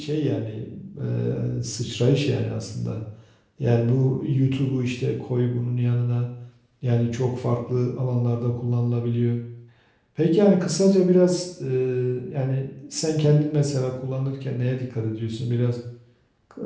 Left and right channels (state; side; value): identical; both; correlation 1.00